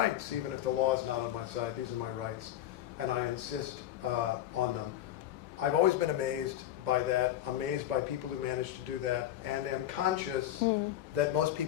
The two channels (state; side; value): quieter; right; 12.4 dB